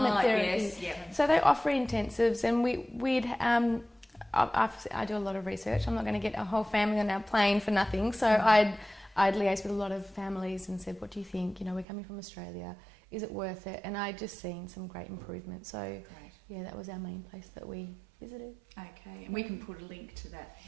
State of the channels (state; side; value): drops out; left; at 11.9 s